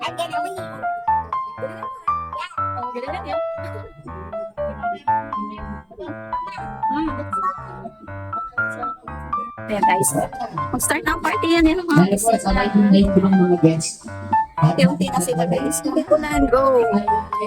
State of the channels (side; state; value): both; identical; correlation 1.00